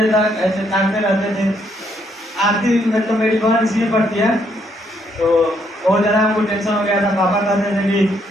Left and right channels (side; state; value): both; normal; correlation 0.72